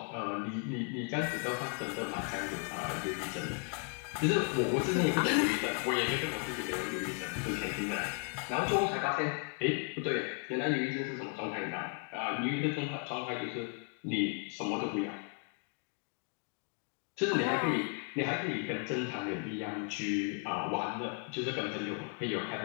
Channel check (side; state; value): right; quieter; 38.3 dB